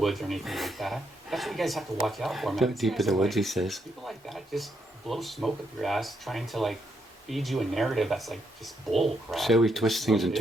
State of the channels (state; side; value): normal; both; correlation 0.78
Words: or anything like that. That's what you guys have to watch out for, man. Deep in the woods, he says. People like that just blow smoke up your ass, trying to like feed you a narrative that's like just bull crap. So he twists things and